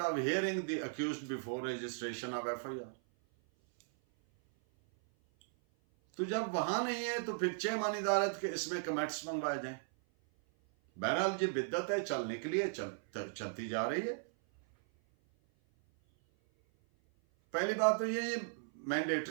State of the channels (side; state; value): left; silent; 53 dB below the other